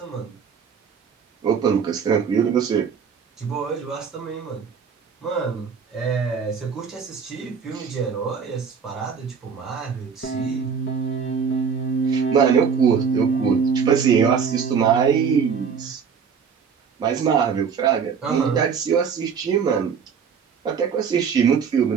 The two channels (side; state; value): left; quieter; 6.5 dB